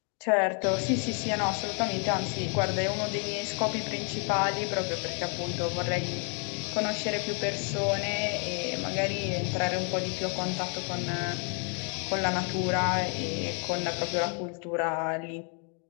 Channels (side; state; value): right; quieter; 35.7 dB